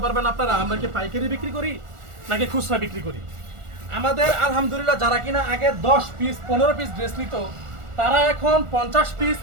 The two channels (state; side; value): late; left; 1.4 ms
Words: পারবেন আপনারা আমরা কি পাইকারি বিক্রি করি নাকি খুচরা বিক্রি করি। আমাদের আলহামদুলিল্লাহ যারা কিনা আগে 10 পিস 15 পিস ড্রেস নিত, তারা এখন 50 পিস